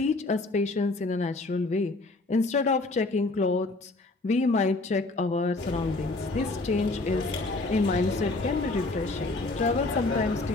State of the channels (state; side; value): quieter; right; 3.2 dB